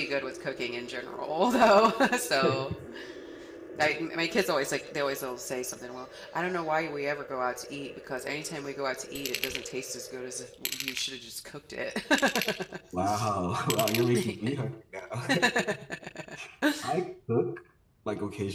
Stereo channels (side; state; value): both; identical; correlation 1.00